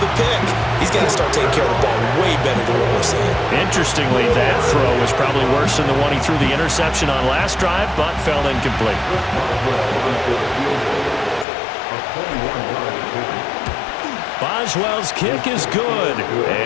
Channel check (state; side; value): drops out; right; at 11.5 s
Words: a pick. He's got to start taking care of the ball way better than what we're seeing. Interestingly, that throw was probably worse than the one he threw the interception on last drive, but fell incomplete. Boswell's kick is good,